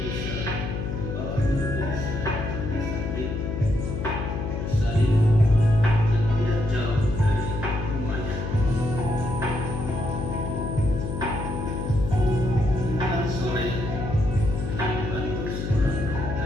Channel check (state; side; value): noise; left; hum, 4 dB below the sound